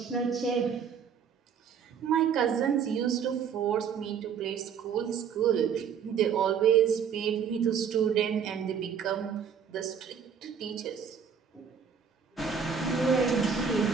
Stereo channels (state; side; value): quieter; left; 7.1 dB